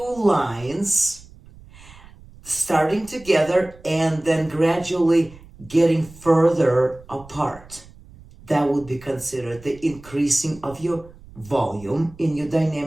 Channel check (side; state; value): right; noise; rumble, 21 dB below the sound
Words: lines starting together and then gradually getting further apart. That would be considered the increasing of your volume in your